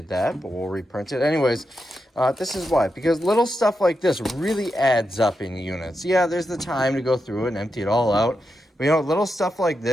that, but we'll reprint it. Anyways, this is why. Because little stuff like this really adds up in units. Yeah, there's the time to go through it and empty it all out. But, you know, little stuff like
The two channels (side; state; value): both; normal; correlation 0.87